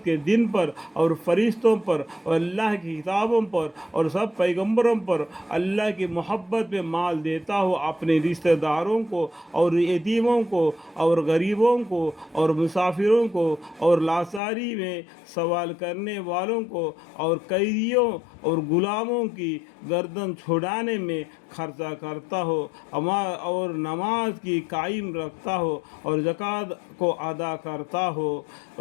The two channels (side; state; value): right; drops out; at 14.4 s